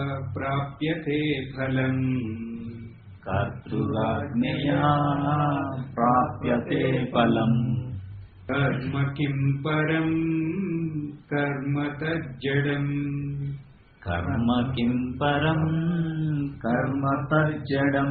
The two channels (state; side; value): identical; both; correlation 1.00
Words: ప్రాప్యతే ఫలం, కర్తృరాజ్ఞయా ప్రాప్యతే ఫలం, కర్మ కిం పరం కర్మ తజ్జడం, కర్మ కిం పరం కర్మ తజ్జడం.